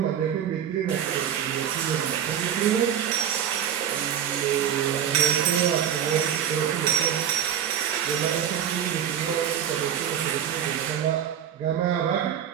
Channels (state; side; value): quieter; left; 9.2 dB